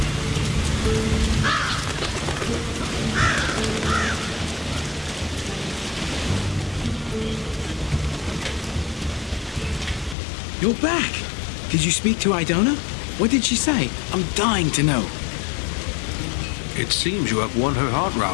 You're back. Did you speak to Idona? What did she say? I'm dying to know. It seems you have won her heart,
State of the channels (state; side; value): drops out; right; at 10.2 s